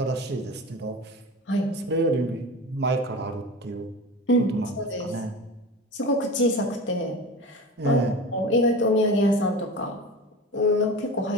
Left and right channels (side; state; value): both; normal; correlation 0.31